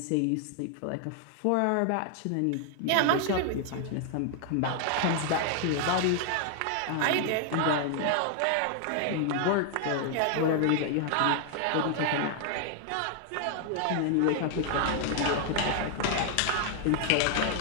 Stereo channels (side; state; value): both; different; correlation 0.00